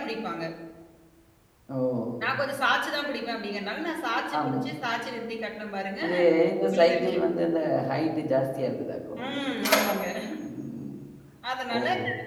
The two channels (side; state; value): both; identical; correlation 1.00